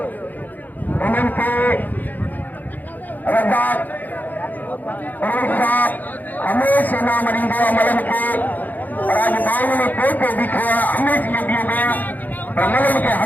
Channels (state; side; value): late; right; 0.083 ms